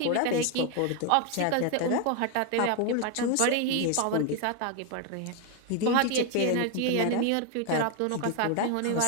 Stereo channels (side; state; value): both; different; correlation 0.01